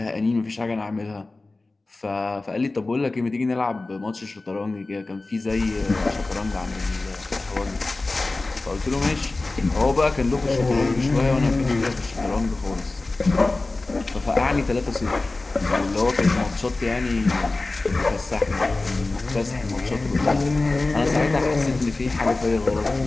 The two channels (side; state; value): right; quieter; 3.2 dB